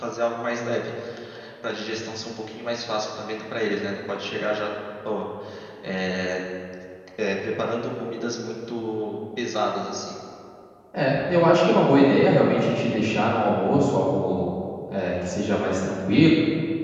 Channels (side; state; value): both; identical; correlation 1.00